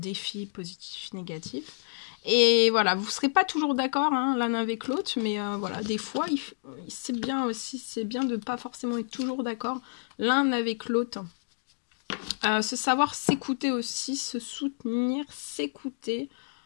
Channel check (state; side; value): silent; right; digital silence